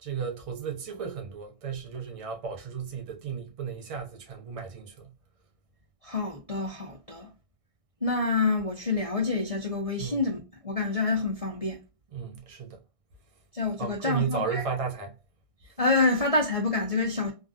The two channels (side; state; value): left; late; 1.6 ms